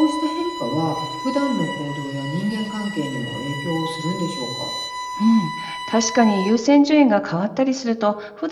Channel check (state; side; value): identical; both; correlation 1.00